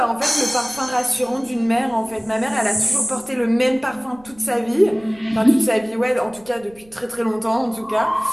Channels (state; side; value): noise; right; rumble, 27 dB below the sound